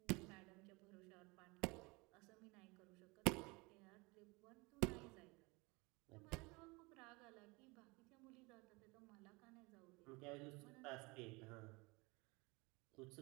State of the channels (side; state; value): left; quieter; 25.8 dB